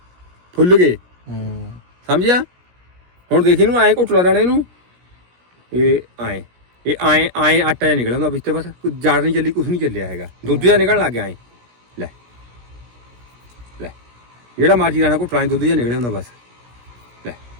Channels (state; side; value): late; left; 17 ms